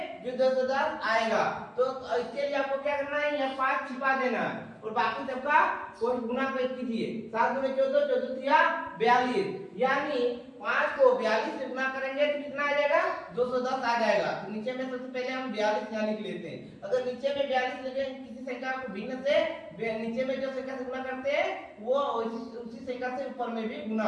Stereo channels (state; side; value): identical; both; correlation 1.00